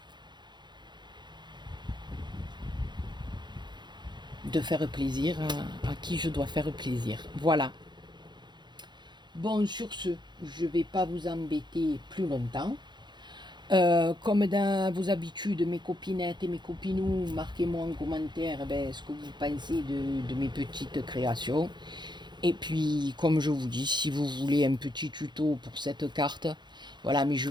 de faire plaisir à qui je dois faire plaisir. Voilà. Bon, sur ce, je ne vais pas vous embêter plus longtemps. Comme dans vos habitudes, mes copinettes et mes copinous, marquez-moi en commentaire ce que vous pensez de mes petites créations. Et puis, comme je vous dis, si vous voulez un petit tuto pour cette carte, voilà, mais je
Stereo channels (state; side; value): late; left; 0.21 ms